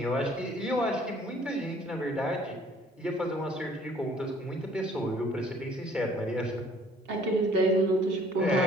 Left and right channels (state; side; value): normal; both; correlation 0.57